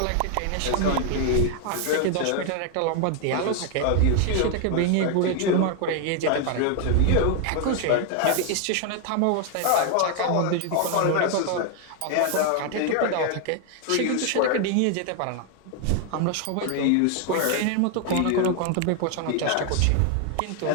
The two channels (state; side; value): different; both; correlation 0.00